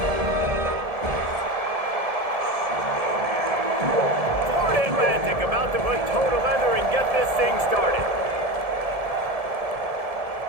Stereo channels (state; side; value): late; left; 1.7 ms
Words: Atlantic about to put toe to leather and get this thing started.